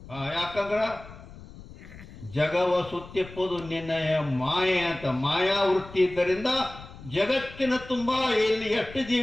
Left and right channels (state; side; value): noise; left; rumble, 17 dB below the sound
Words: ಯಾಕಂದ್ರ ಜಗವ ಸುತ್ತಿಪ್ಪುದು ನಿನ್ನಯ ಮಾಯೆ ಅಂತ ಮಾಯಾವೃತ್ತಿ ಇದ್ದರಿಂದ ಜಗತ್ತಿನ ತುಂಬಾ ಇಲ್ಲಿ ಎಷ್ಟು